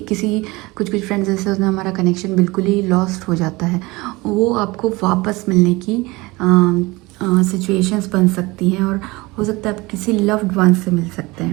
कुछ फ्रेंड्स ऐसे होते हैं हमारा कनेक्शन बिल्कुल ही लॉस्ट हो जाता है, वो आपको वापस मिलने की सिचुएशंस बन सकती हैं, और हो सकता है आप किसी लव्ड वन से मिल सकते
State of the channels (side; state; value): left; quieter; 22.5 dB